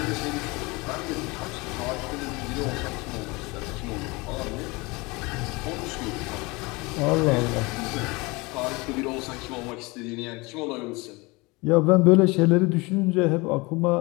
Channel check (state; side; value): quieter; right; 25.0 dB